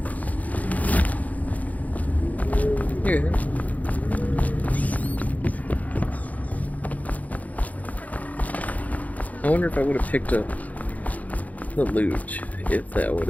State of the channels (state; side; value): late; right; 0.075 ms